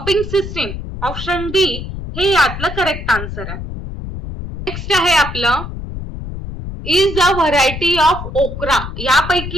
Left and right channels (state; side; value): noise; left; rumble, 8 dB below the sound